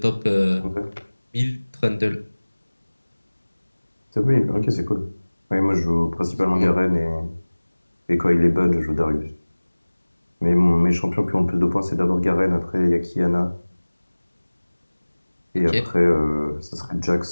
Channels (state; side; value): inverted; both; correlation -1.00